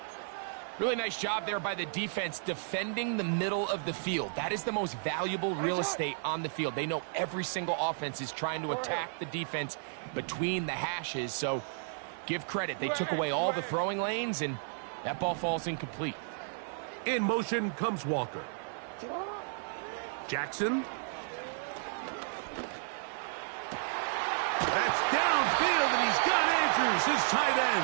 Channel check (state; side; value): silent; left; 56 dB below the other